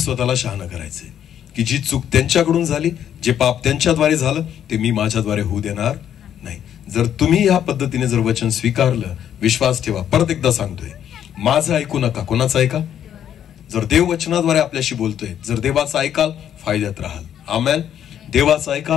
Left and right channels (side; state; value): right; quieter; 9.8 dB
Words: शहाणा करायचे की जी चूक त्यांच्याकडून झाली, जे पाप त्यांच्याद्वारे झालं, ते मी माझ्याद्वारे होऊ देणार नाही. जर तुम्ही या पद्धतीने जर वचन स्वीकारलं, विश्वास ठेवा. परत एकदा सांगतोय, माझं ऐकू नका. कोणाचं ऐका? जर देव वचनाद्वारे आपल्याशी बोलतोय, जर देवाचं ऐकाल, फायद्यात राहाल. आमेन. देवाचं